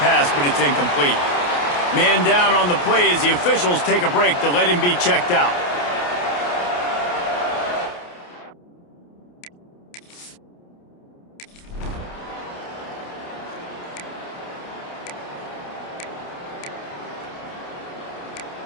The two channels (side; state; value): right; late; 28 ms